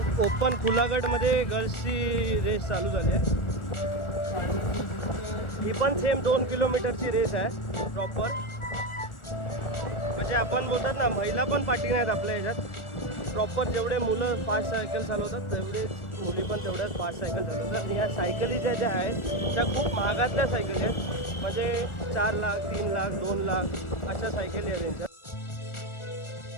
ओपन खुलागटमध्ये गर्ल्सची रेस चालू झाली आहे. ही पण सेम 2 किलोमीटरची रेस आहे प्रॉपर. म्हणजे आपण बोलतात ना महिला पण पाठी नाहीत आपल्या ह्याच्यात. प्रॉपर जेवढे मुलं फास्ट सायकल चालवतात तेवढे मुली पण तेवढ्याच फास्ट सायकल चालवतात. या सायकली ज्या आहेत त्या खूप महागातल्या सायकली आहेत. म्हणजे 4 लाख 3 लाख 2 लाख अशा सायकली आहेत त्यांच्या.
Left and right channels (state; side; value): late; right; 1.4 ms